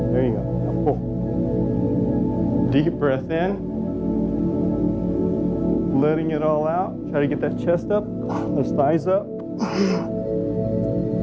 There you go. Now pull. Deep breath in. Letting it all out. Try to get that chest up, those thighs up.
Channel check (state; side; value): identical; both; correlation 1.00